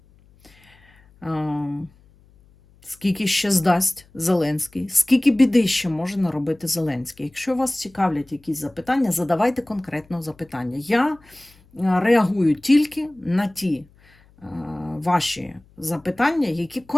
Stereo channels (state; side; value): noise; left; hum, 29 dB below the sound